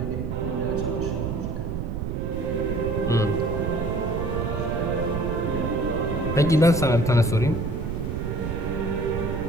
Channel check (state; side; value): noise; right; rumble, 3 dB below the sound